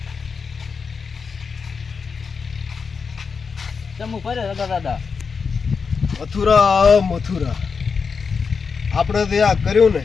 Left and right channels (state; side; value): quieter; right; 5.4 dB